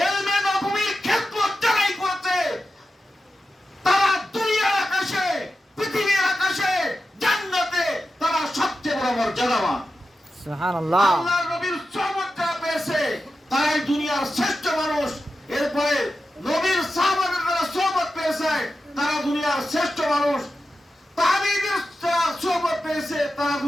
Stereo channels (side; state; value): both; normal; correlation 0.91